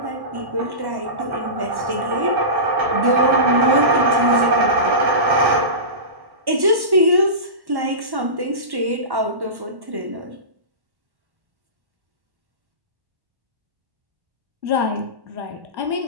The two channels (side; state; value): left; late; 1.1 ms